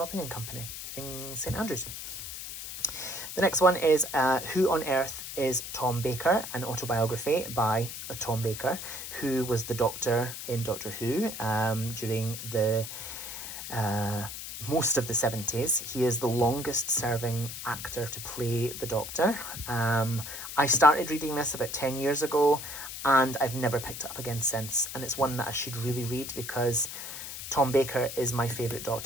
and Company in St Andrews. The next one is Who on Earth is Tom Baker, an autobiography by Tom Baker, who was the Doctor in Doctor Who during the most of the 70s. He is the longest serving actor to play the Doctor. I started reading this about 10 years ago and I've never picked it up again since, and it's one that I should really read because Tom Baker is my favourite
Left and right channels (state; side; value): noise; left; hiss, 8 dB below the sound